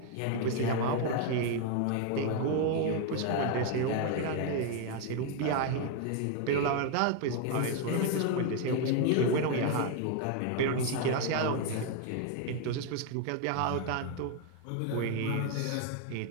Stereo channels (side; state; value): both; different; correlation 0.01